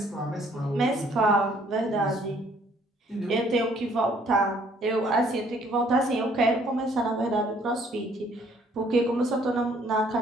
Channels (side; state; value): both; normal; correlation 0.62